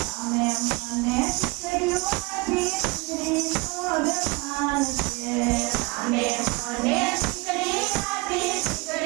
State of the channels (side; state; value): left; quieter; 25.3 dB